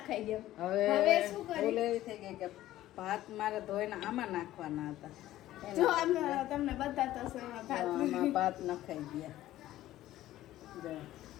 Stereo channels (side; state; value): right; quieter; 14.5 dB